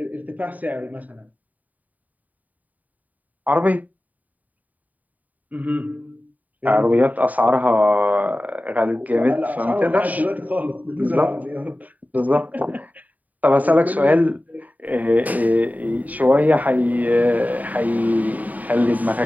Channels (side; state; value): left; late; 0.076 ms